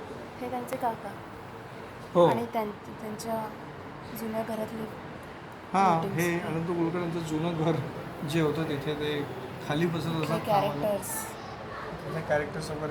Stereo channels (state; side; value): identical; both; correlation 1.00